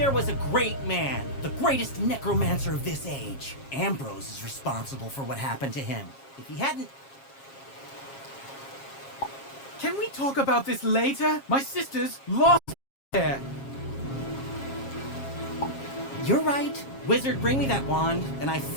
was a great man, the greatest necromancer of this age. Ambrose is responsible for what happened to him. If he hadn't... Can we talk about this later? My sister's lost there. You're right. Wizard, bring me that wand, and I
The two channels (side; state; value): right; late; 7.4 ms